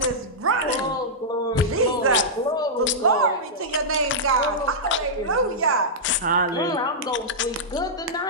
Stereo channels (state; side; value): normal; both; correlation -0.11